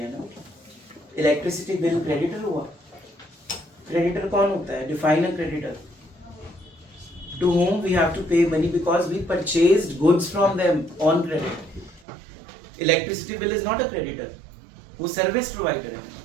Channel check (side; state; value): left; drops out; at 12.0 s